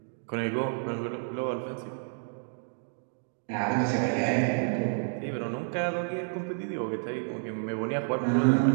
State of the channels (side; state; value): left; silent; 58 dB below the other